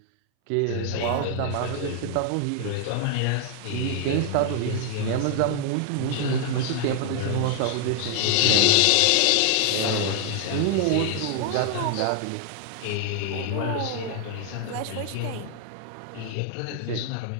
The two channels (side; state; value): both; different; correlation 0.00